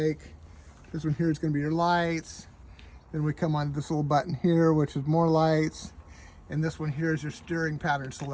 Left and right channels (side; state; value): both; identical; correlation 1.00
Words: This one here is going to be your lights. Then we come on this little button here, which is more lights. And this one here is your steering pattern